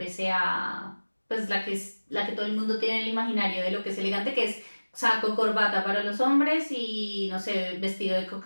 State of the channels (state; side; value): inverted; both; correlation -1.00